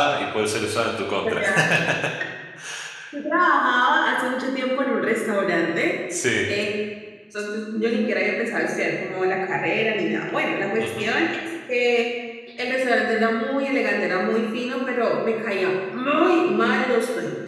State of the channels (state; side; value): identical; both; correlation 1.00